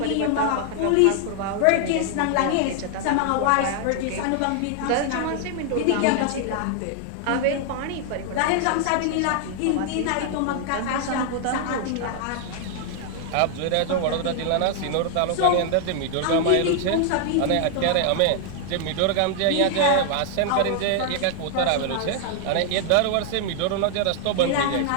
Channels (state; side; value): different; both; correlation 0.00